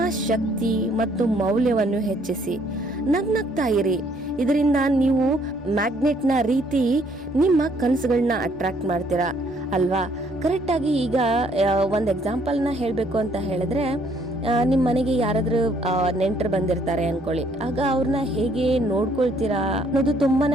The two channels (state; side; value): normal; both; correlation 0.65